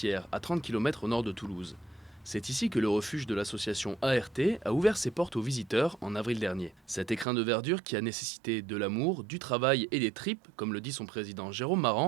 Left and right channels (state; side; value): drops out; left; at 7.2 s